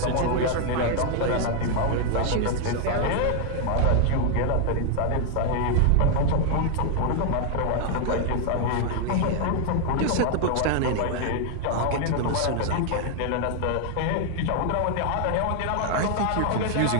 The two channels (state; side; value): different; both; correlation 0.00